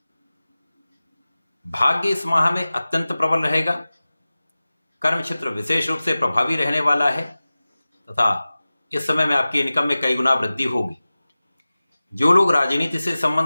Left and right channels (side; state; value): both; inverted; correlation -0.97